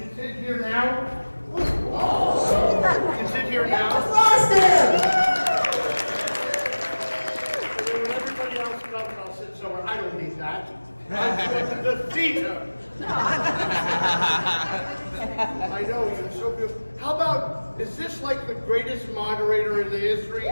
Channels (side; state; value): both; inverted; correlation -1.00